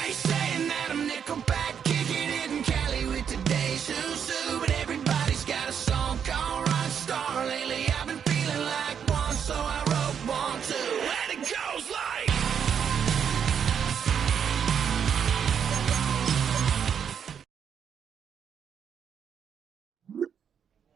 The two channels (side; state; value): left; quieter; 7.7 dB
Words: ain't saying that I'm Nickelback, kicking it in Cali with today's Susu. But everybody's got a song called Rock Star. Lately I've been feeling like one, so I wrote one too. Let it go.